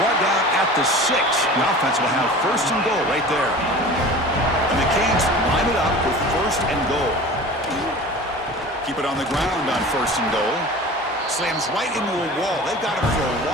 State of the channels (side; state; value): both; normal; correlation 0.38